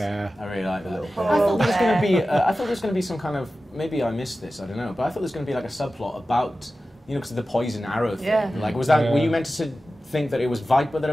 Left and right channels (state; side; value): normal; both; correlation 0.94